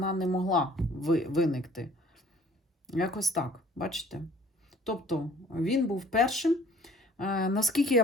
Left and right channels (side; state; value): both; normal; correlation 0.54